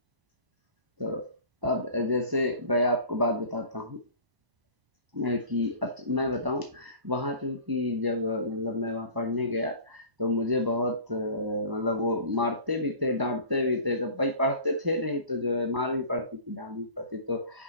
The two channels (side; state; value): left; late; 1.0 ms